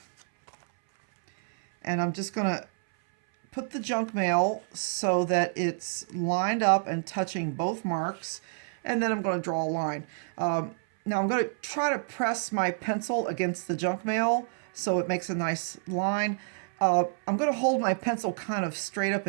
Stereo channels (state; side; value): silent; left; 59 dB below the other